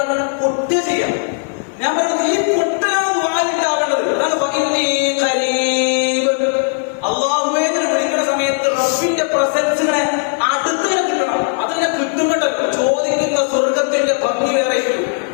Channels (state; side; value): silent; right; 61 dB below the other